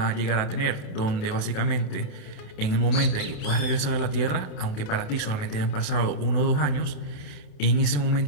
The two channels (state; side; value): late; right; 28 ms